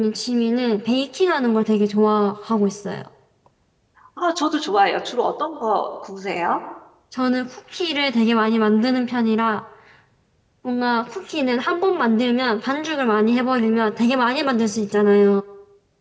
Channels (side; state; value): both; identical; correlation 1.00